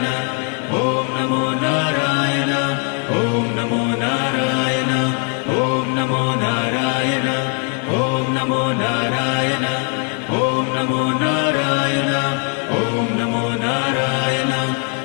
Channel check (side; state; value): right; quieter; 36.8 dB